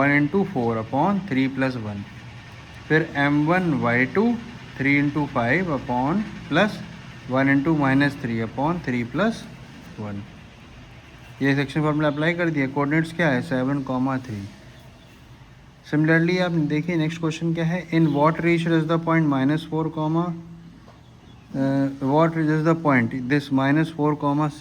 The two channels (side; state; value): both; identical; correlation 1.00